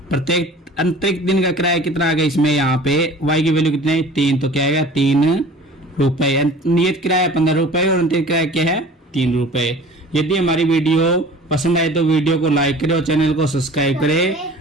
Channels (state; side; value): normal; both; correlation 0.44